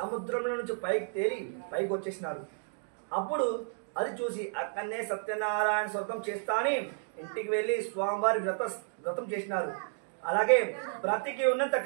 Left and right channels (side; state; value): left; silent; digital silence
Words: నుంచి పైకి తేలి పైకి వచ్చేసినాడు. అప్పుడు అది చూసి అక్కడనే సత్యనారాయణ వ్రతం చేస్తా అని ఇంటికి వెళ్ళి స్వామివారి వ్రతం చేసినారు. అలాగే బ్రతికి ఉన్నంత